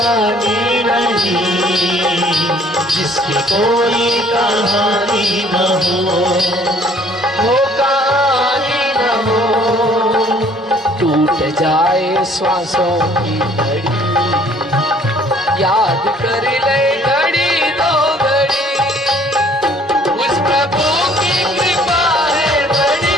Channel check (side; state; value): both; normal; correlation 0.58